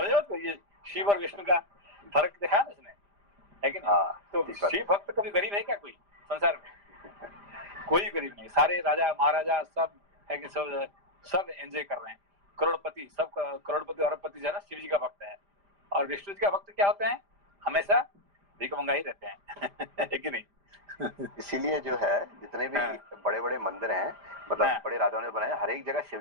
बात को? ये शिव और विष्णु का फर्क दिखा ना इसने, है कि नहीं? तो शिव भक्त कभी गरीब है क्या कोई संसार में? कोई गरीब नहीं, सारे राजा महाराजा सब है कि सब एंजॉय कर रहे हैं, करोड़पति, सब करोड़पति अरबपति जो है ना शिव जी का भक्त है। और विष्णु जी का भक्त क्या होते हैं? हमेशा भीख मंगा ही रहते हैं, है कि नहीं? इसीलिए जो है जितने भी बड़े बड़े मंदिर हैं, मतलब बड़े राजाओं ने बनाए, हर एक जगह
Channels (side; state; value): left; late; 5.0 ms